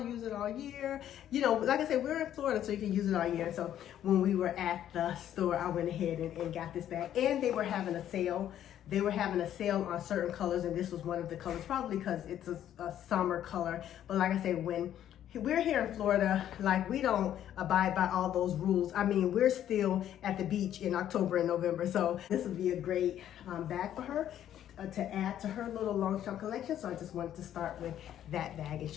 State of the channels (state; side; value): quieter; right; 11.0 dB